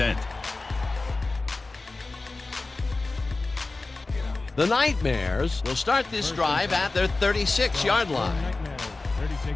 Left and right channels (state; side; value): quieter; right; 3.4 dB